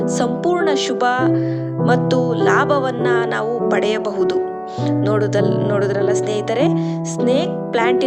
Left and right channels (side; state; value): both; identical; correlation 1.00